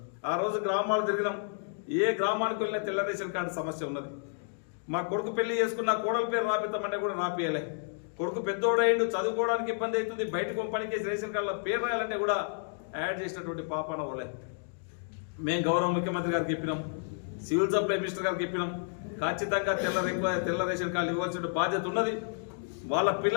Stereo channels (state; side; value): silent; right; digital silence